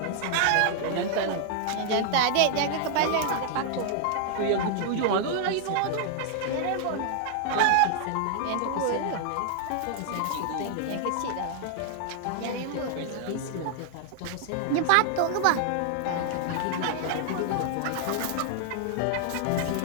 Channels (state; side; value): different; both; correlation 0.00